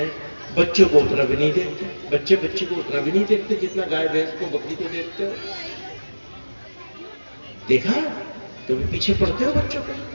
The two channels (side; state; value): both; inverted; correlation -1.00